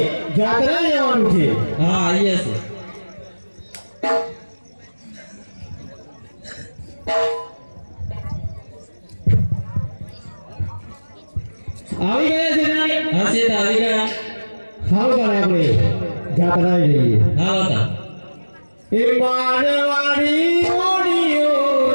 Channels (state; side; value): inverted; both; correlation -1.00